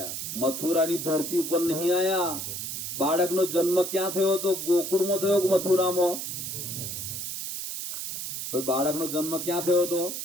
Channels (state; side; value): noise; right; hiss, 5 dB below the sound